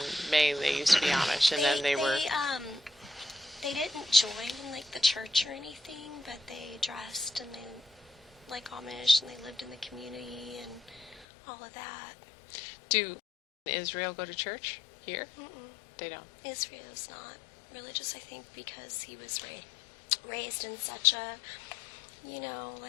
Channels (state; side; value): drops out; right; at 11.2 s